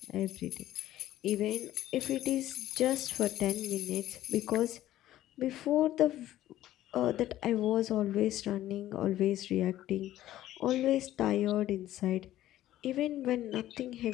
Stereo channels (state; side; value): quieter; right; 13.8 dB